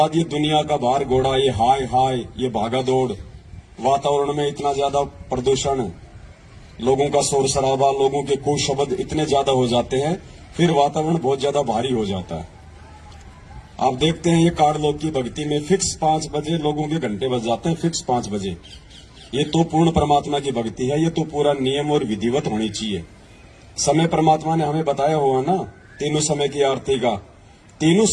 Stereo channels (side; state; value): both; identical; correlation 1.00